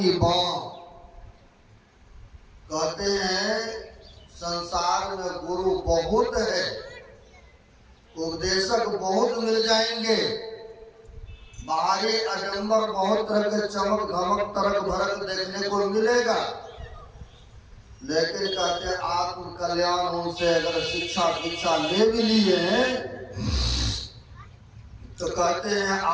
बात। कहते हैं संसार में गुरु बहुत है, उपदेशक बहुत मिल जाएंगे, बाहरी आडंबर बहुत तरह के चमक धमक तरक भरक देखने को मिलेगा, लेकिन कहते हैं आत्म कल्याण उनसे अगर शिक्षा दीक्षा ले भी लिए तो कहते हैं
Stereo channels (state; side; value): identical; both; correlation 1.00